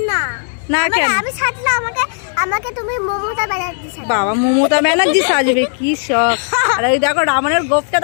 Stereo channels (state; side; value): silent; right; digital silence